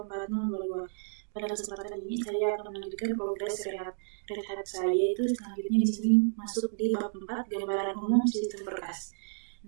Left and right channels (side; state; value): left; silent; digital silence